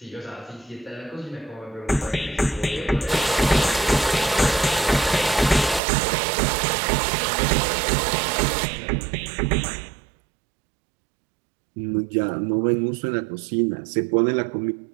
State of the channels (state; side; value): drops out; left; at 5.8 s